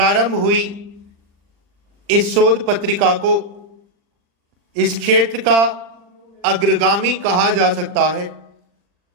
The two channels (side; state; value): left; late; 40 ms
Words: हुई इस शोध पत्रिका को इस क्षेत्र का अग्रगामी कहा जा सकता है।